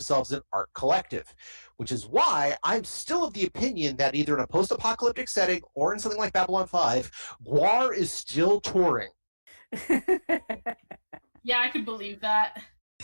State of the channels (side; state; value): both; inverted; correlation -1.00